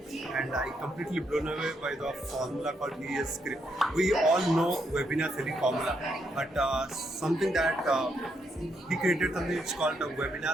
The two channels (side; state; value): both; normal; correlation 0.78